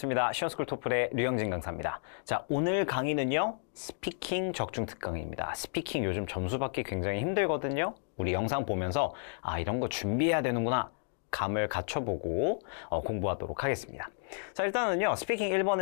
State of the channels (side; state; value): right; silent; digital silence